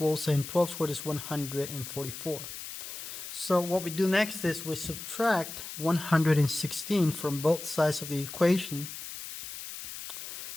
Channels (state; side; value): noise; left; hiss, 9 dB below the sound